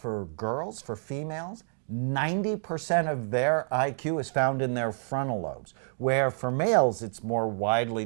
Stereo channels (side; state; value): left; silent; digital silence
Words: for girls, for females, 90% of their IQ is found in their frontal lobes, where for males it's more widely